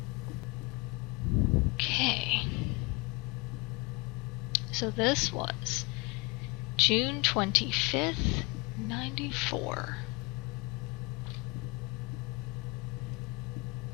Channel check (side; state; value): right; quieter; 25.3 dB